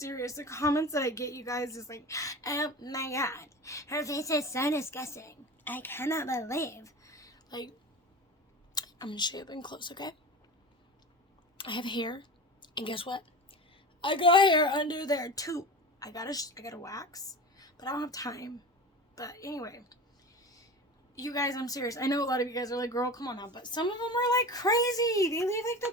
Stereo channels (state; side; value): normal; both; correlation 0.31